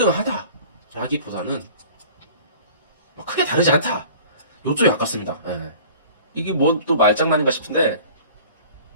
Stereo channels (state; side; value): inverted; both; correlation -0.45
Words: 크게 다르지 않다. 요쪽이 가깝습니다. 예. 이게 뭐 또 말장난인가 싶은데